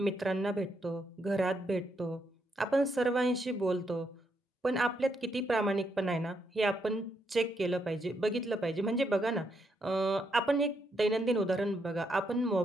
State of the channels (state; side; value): normal; both; correlation 0.78